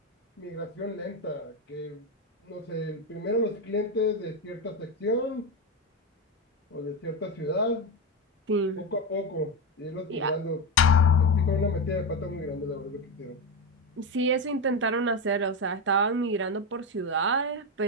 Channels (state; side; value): normal; both; correlation 0.13